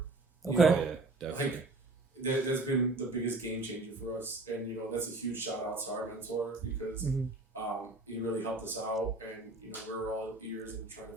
Okay. Yeah, definitely. Like, that's been the biggest game changer for us, and you know that's a huge shout out to our mentor because he really helped us out, and you know we're all ears and trying to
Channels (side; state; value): left; quieter; 3.1 dB